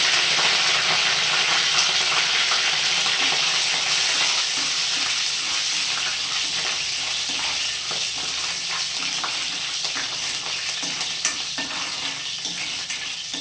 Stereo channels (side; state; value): both; identical; correlation 1.00